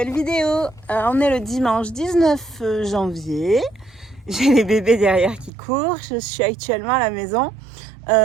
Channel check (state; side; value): drops out; left; at 5.5 s